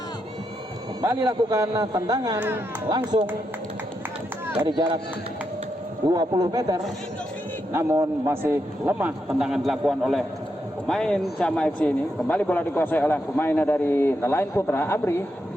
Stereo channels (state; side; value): normal; both; correlation 0.83